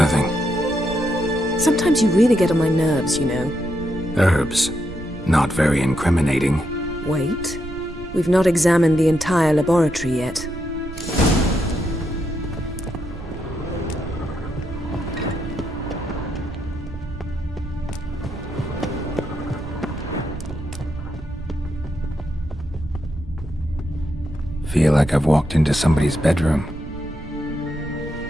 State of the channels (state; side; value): noise; right; rumble, 12 dB below the sound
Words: Sometimes you really get on my nerves, you know. Herbs. Not very incriminating. Wait. We've not examined the entire laboratory yet. feel like I've walked into somebody's bedroom.